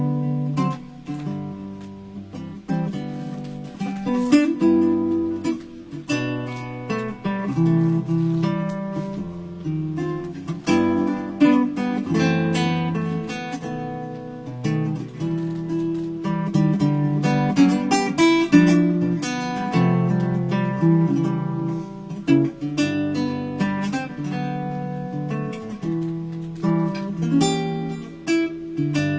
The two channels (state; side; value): identical; both; correlation 1.00